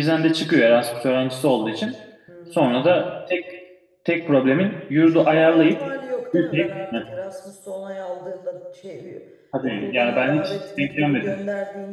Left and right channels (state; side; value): identical; both; correlation 1.00